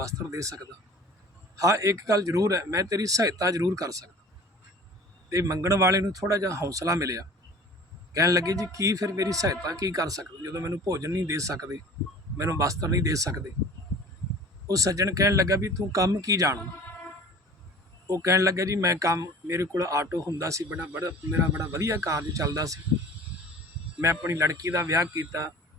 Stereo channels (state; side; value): normal; both; correlation 0.43